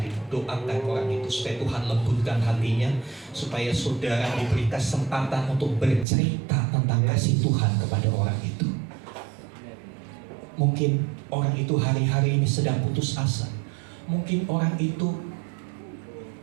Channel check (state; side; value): drops out; left; at 6.1 s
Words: Doakan orang itu supaya Tuhan lembutkan hatinya, supaya saudara diberi kesempatan untuk bercerita tentang kasih Tuhan kepada orang itu. Mungkin orang itu hari-hari ini sedang putus asa. Mungkin orang itu